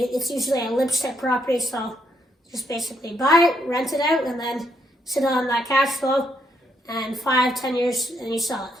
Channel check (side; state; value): both; normal; correlation 0.75